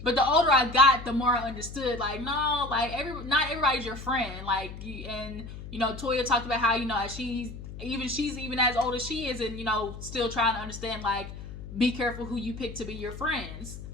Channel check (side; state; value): left; noise; hum, 11 dB below the sound